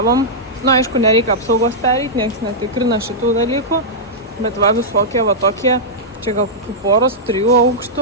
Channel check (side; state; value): both; normal; correlation -0.10